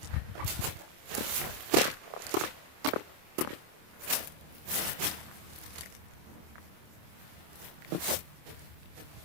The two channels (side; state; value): left; late; 26 ms